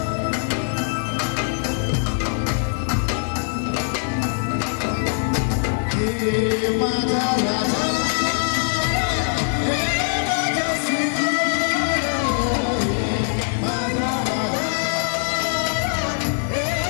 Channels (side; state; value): right; silent; digital silence